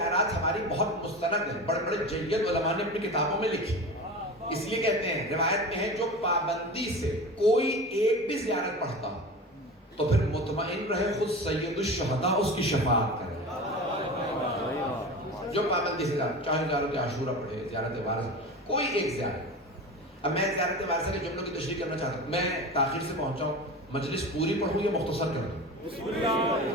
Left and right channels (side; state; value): both; normal; correlation 0.31